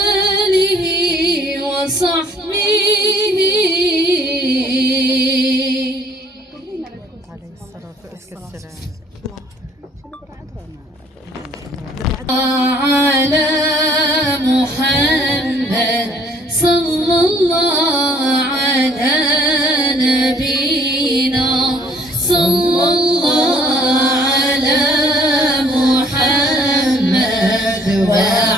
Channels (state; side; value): normal; both; correlation 0.58